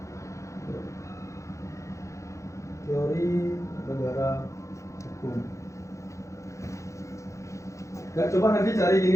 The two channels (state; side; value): late; right; 0.15 ms